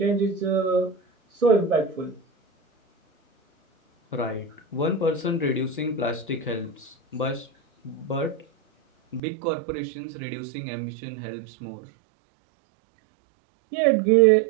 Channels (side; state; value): left; drops out; at 9.2 s